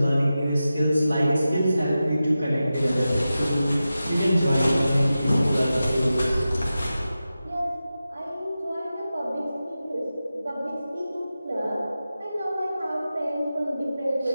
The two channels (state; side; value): inverted; both; correlation -0.93